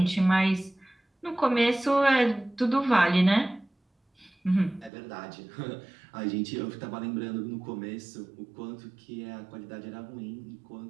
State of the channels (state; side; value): drops out; left; at 4.9 s